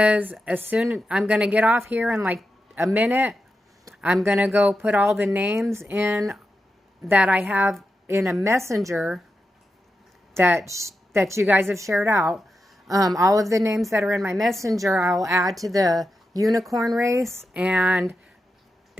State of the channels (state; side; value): normal; both; correlation 0.89